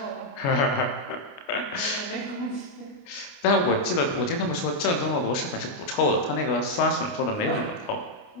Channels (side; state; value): right; late; 29 ms